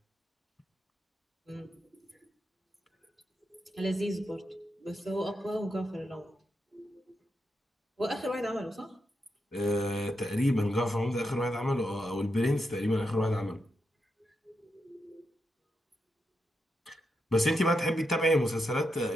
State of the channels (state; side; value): normal; both; correlation 0.85